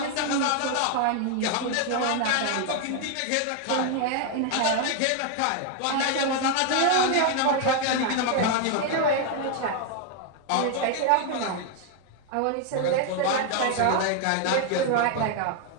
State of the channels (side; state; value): both; different; correlation 0.01